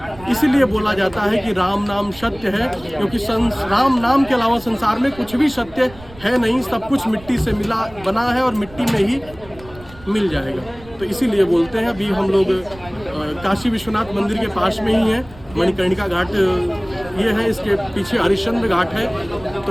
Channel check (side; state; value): right; noise; rumble, 20 dB below the sound